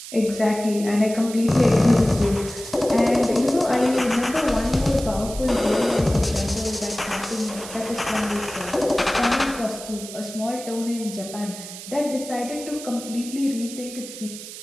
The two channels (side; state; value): right; noise; hiss, 12 dB below the sound